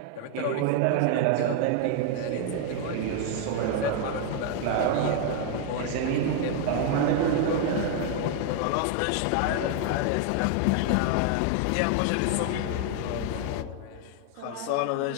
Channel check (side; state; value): both; different; correlation 0.00